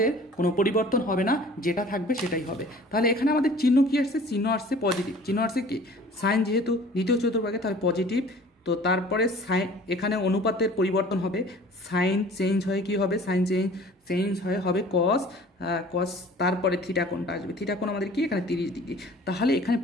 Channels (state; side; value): normal; both; correlation 0.48